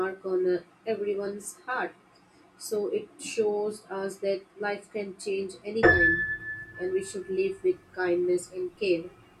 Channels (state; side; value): identical; both; correlation 1.00